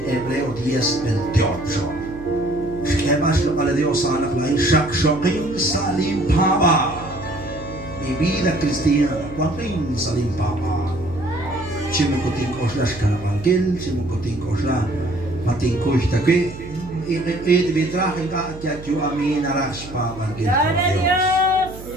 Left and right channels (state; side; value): noise; right; hum, 14 dB below the sound